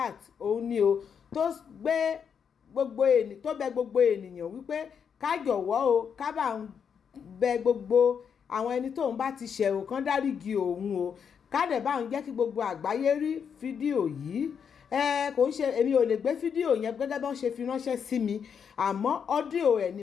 òun ni o tó bẹ gbogbo ènìyàn wípé ká jọ̀wọ́ o ká bá ń bẹ gbogbo àwọn ẹni tóun bá ti ṣẹ̀ ò kán dáríjì òun o ká dẹ̀ bá ń jẹ́ kí gbogbo àgbáyé rí fídíò yìí kò ń ṣe èmi ò lè gbé fídíò yẹn gẹ́gẹ́ bí wọ́n ṣe fi ránṣẹ́ sí mi àmọ́ ọ́díò ẹ̀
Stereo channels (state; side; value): quieter; right; 7.1 dB